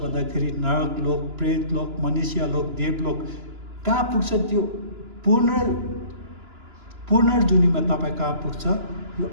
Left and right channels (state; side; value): late; left; 2.9 ms